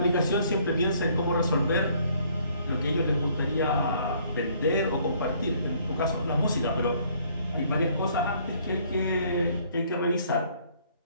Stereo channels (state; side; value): inverted; both; correlation -0.62